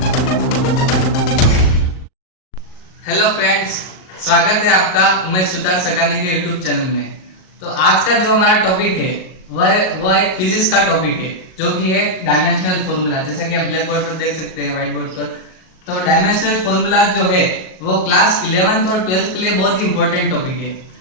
हेलो फ्रेंड्स, स्वागत है आपका उमेश सुतार सगानी के YouTube चैनल में। तो आज का जो हमारा टॉपिक है वह एक फिजिक्स का टॉपिक है जो कि है डायमेंशनल फॉर्मूला। जैसा कि आप ब्लैक बोर्ड पर देख सकते हैं, व्हाइट बोर्ड पर। तो डायमेंशनल फॉर्मूला जो है वो क्लास 11th और 12th के लिए बहुत ही इंपॉर्टेंट टॉपिक है।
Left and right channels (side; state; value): right; late; 38 ms